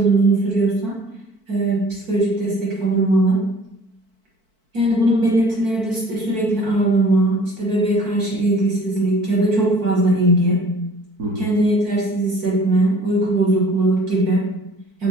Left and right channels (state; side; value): late; left; 4.5 ms